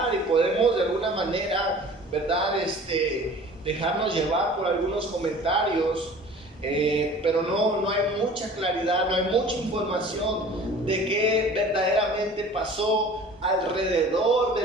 y podemos de alguna manera, ¿verdad?, dejarnos llevar por algunos comentarios, pero no hay mucha claridad, no hay mucha información de qué verdaderamente pasó alrededor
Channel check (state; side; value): normal; both; correlation 0.45